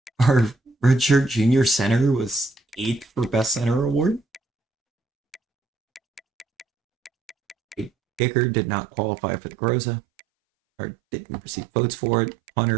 Our redshirt junior center was 8th for Best Center award. Kicker did not qualify for the Groza, or didn't receive votes for it.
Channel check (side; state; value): left; drops out; at 8.2 s